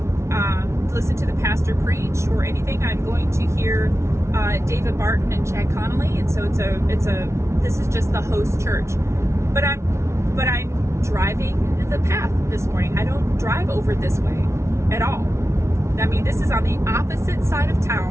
listen to the pastor preach or anything. I'm going to hear David Barton and Chad Connolly, and so this is just the host church. But I'm driving the path this morning. I don't drive over this way at all. I mean, this is on the opposite side of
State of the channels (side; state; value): left; late; 0.13 ms